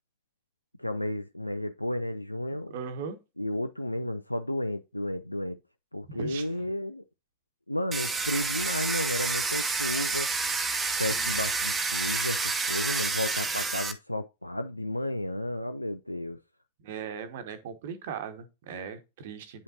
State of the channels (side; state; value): both; normal; correlation -0.14